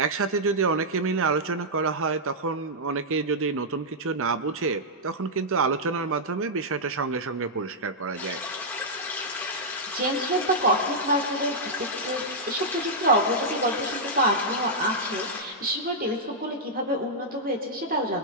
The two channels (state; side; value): normal; both; correlation -0.08